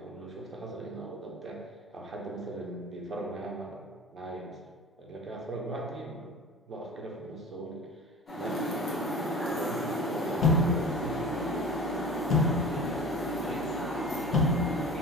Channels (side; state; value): both; normal; correlation 0.37